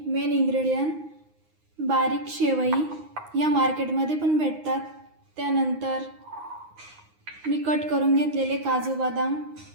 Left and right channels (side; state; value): left; late; 9.6 ms